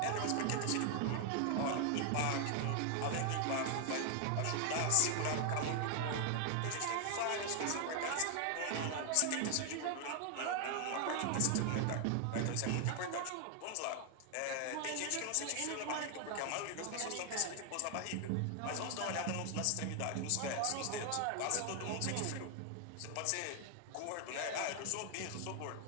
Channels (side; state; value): both; different; correlation 0.00